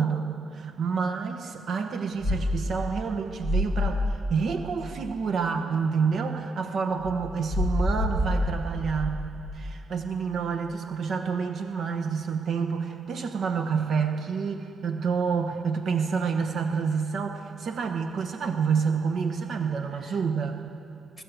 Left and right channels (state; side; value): quieter; left; 4.0 dB